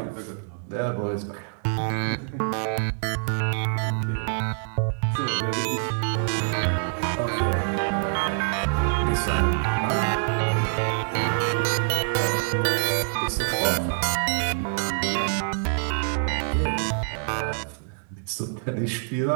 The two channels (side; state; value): left; silent; digital silence